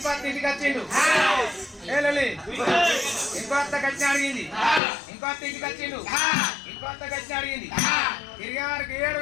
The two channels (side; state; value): right; drops out; at 4.8 s